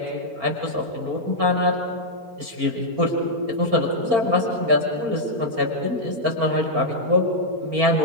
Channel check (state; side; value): late; left; 4.4 ms